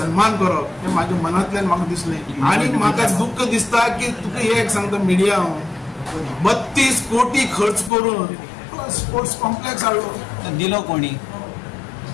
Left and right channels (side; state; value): right; drops out; at 7.9 s